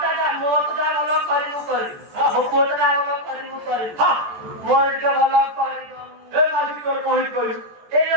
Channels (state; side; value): late; left; 14 ms